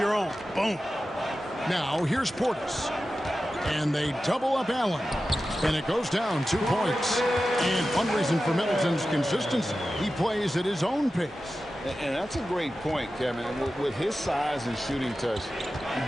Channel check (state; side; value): normal; both; correlation 0.93